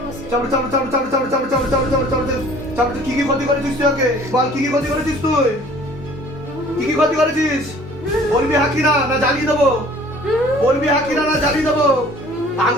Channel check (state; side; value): normal; both; correlation 0.51